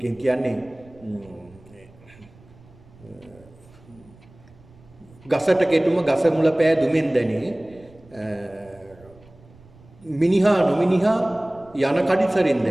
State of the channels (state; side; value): noise; right; rumble, 25 dB below the sound